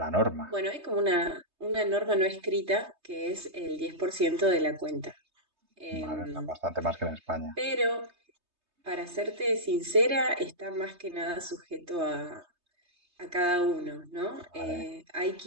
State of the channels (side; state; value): left; late; 3.2 ms